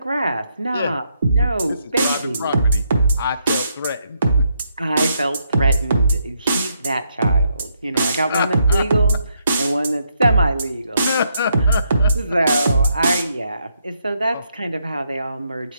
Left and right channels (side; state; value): both; inverted; correlation -0.77